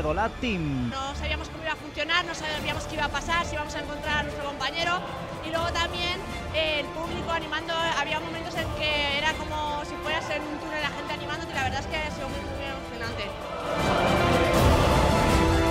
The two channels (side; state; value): both; identical; correlation 1.00